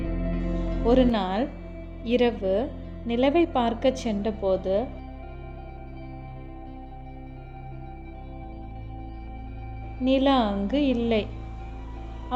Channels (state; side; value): identical; both; correlation 1.00